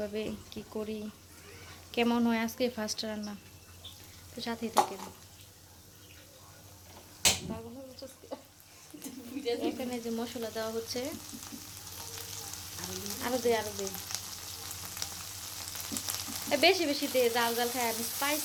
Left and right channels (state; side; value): identical; both; correlation 1.00